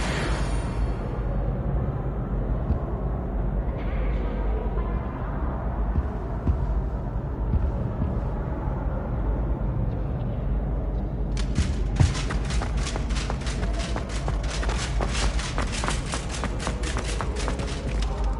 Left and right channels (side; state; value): both; identical; correlation 1.00